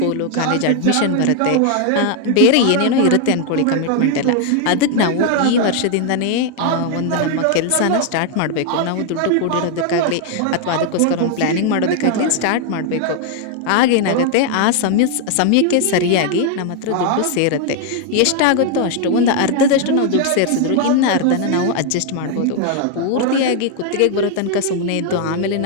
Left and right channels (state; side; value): different; both; correlation 0.00